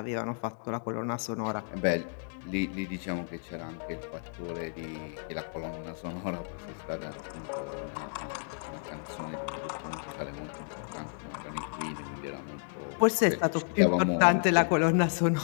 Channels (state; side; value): silent; right; 55 dB below the other